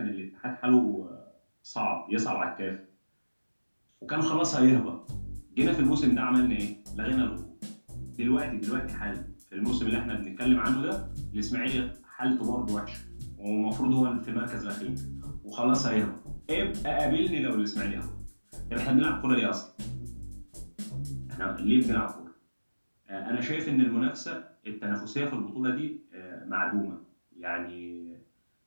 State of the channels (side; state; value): both; inverted; correlation -1.00